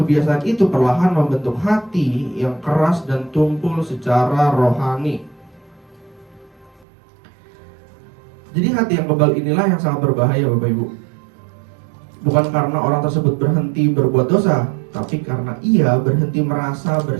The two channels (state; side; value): drops out; left; at 6.9 s